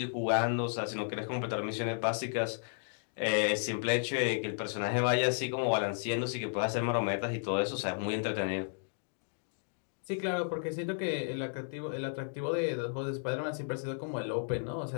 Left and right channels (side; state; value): right; silent; digital silence